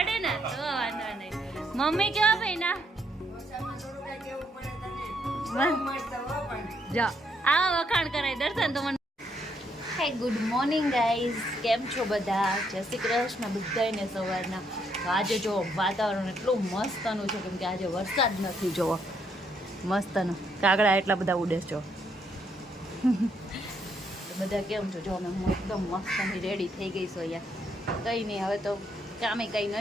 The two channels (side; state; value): both; normal; correlation 0.74